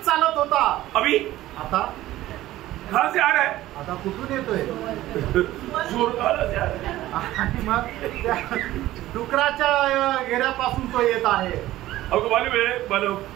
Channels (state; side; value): quieter; left; 15.4 dB